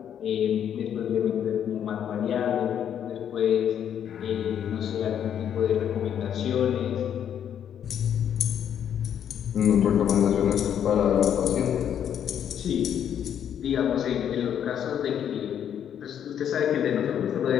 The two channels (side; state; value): right; quieter; 9.3 dB